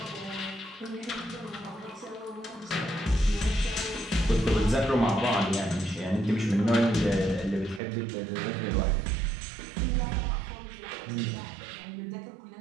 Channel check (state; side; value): drops out; left; at 7.8 s